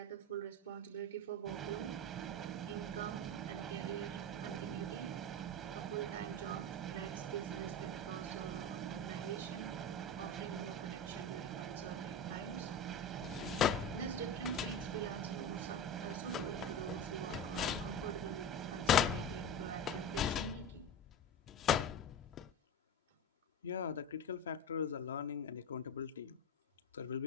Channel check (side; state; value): both; normal; correlation 0.25